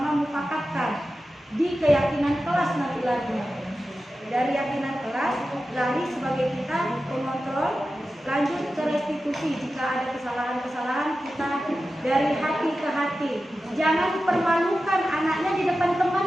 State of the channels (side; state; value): both; normal; correlation 0.93